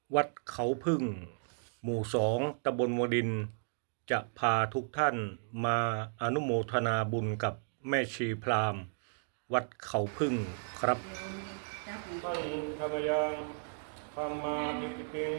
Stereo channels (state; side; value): silent; left; digital silence